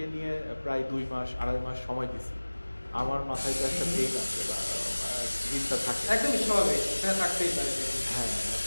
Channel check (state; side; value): inverted; both; correlation -1.00